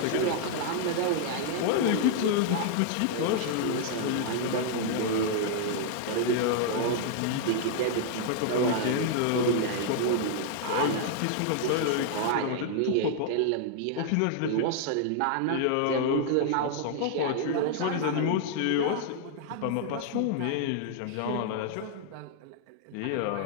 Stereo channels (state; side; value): different; both; correlation -0.01